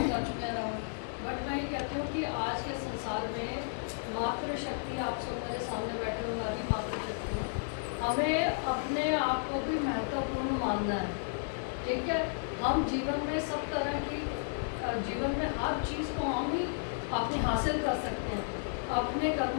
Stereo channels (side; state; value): right; silent; digital silence